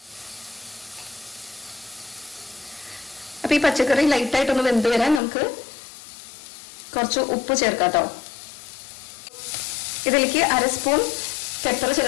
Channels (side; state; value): right; drops out; at 5.2 s